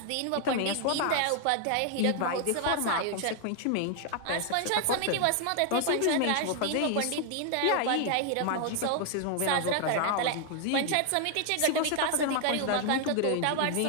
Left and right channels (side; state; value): both; different; correlation 0.00